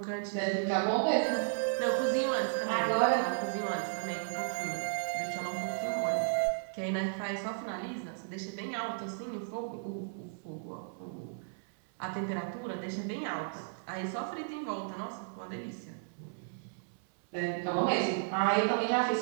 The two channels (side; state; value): left; silent; digital silence